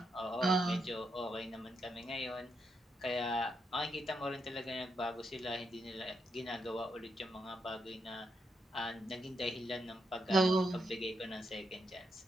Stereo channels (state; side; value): normal; both; correlation 0.81